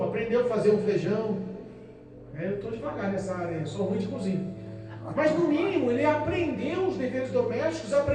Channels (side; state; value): both; identical; correlation 1.00